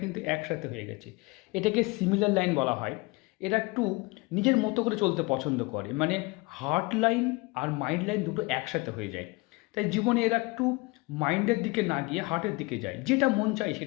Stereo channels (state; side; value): quieter; right; 25.0 dB